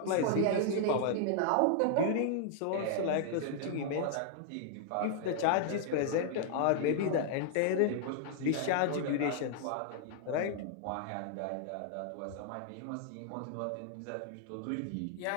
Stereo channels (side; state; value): both; different; correlation -0.01